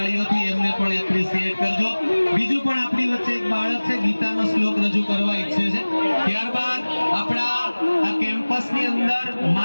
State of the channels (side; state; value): both; inverted; correlation -1.00